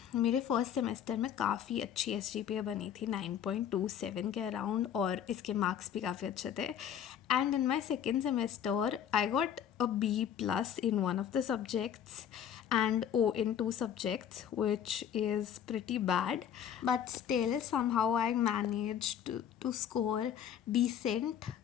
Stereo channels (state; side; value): quieter; right; 9.1 dB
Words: मेरे फर्स्ट सेमेस्टर में काफ़ी अच्छी SGPA बनी थी 9.27 के अराउंड, और इसके मार्क्स भी काफ़ी अच्छे थे. And in my second semester I got a B+ in one of the subjects and O in 2 subjects, which is pretty bad. But still, somehow I managed to score decent